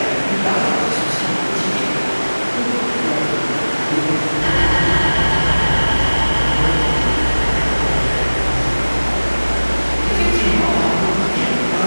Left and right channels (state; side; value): inverted; both; correlation -1.00